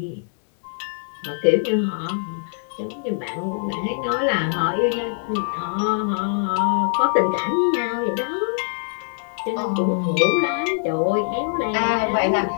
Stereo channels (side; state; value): right; silent; digital silence